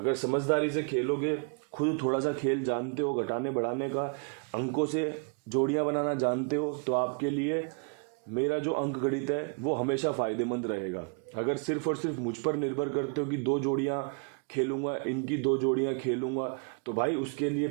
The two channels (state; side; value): quieter; left; 36.9 dB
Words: समझदारी से खेलोगे, खुद थोड़ा सा खेल जानते हो, घटाने बढ़ाने का, अंकों से जोड़ियां बनाना जानते हो, तो आपके लिए मेरा जो अंक गणित है वो हमेशा फ़ायदेमंद रहेगा। अगर सिर्फ और सिर्फ मुझ पर निर्भर करते हो कि 2 जोड़ियां खेलूंगा, इनकी 2 जोड़ियां खेलूंगा, तो भाई उसके लिए